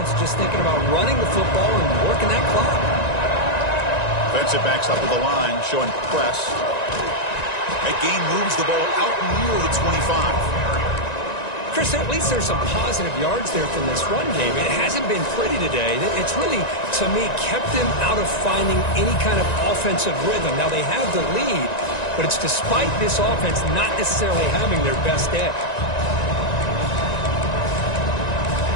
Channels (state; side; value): late; right; 1.9 ms